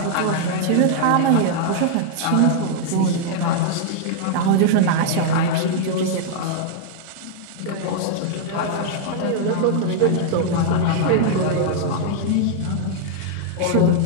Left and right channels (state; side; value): different; both; correlation -0.01